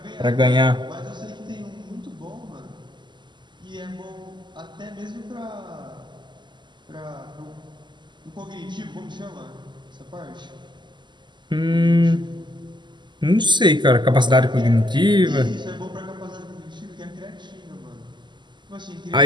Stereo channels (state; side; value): late; left; 0.22 ms